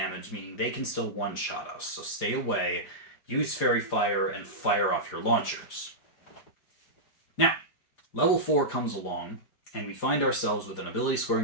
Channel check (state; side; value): late; right; 4.9 ms